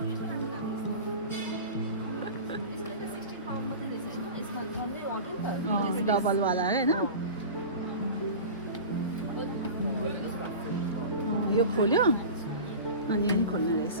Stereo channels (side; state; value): both; inverted; correlation -0.33